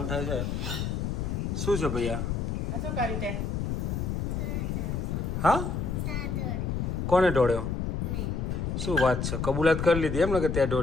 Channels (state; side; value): noise; left; rumble, 1 dB below the sound